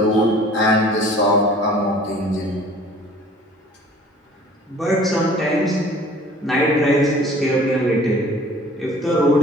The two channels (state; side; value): normal; both; correlation 0.49